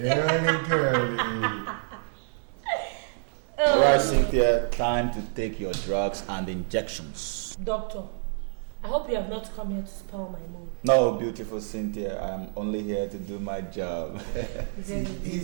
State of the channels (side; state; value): left; silent; digital silence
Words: girly. Alright, Cynthia, time to take your drugs and injections. Doctor, I hope you have not come here to spoil my mood. No, beautiful Cynthia, I'm only here to do my job.